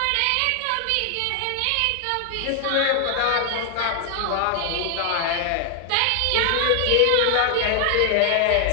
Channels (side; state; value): both; different; correlation 0.00